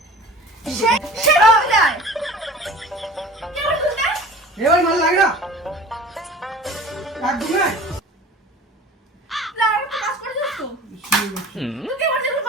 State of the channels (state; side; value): normal; both; correlation 0.42